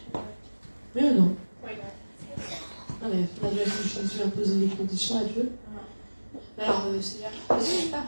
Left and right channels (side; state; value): both; inverted; correlation -1.00